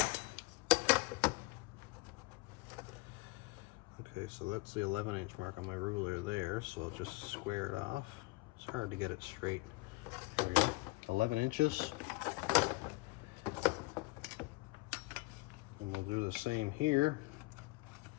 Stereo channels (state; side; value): quieter; right; 23.1 dB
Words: Okay, so that's the 11-inch mark on my ruler there, so I'll just square it off. It's hard to get it straight. There we go, 11 inches. And we'll do the same here.